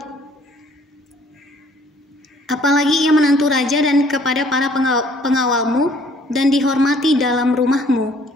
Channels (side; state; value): both; normal; correlation 0.60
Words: Apalagi ia menantu raja dan kepada para pengawalmu dan dihormati dalam rumahmu.